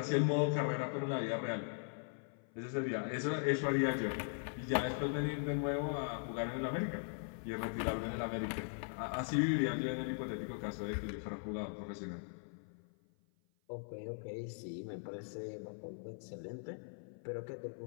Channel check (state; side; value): silent; right; 51 dB below the other